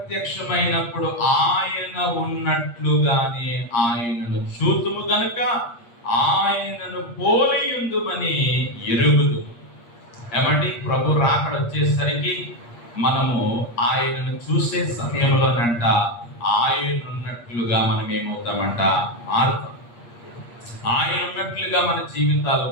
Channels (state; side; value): late; right; 8.5 ms